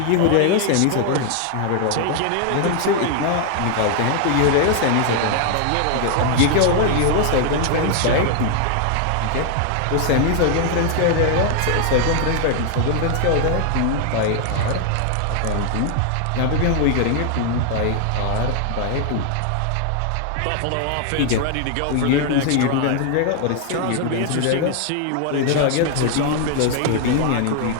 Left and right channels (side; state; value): both; different; correlation 0.00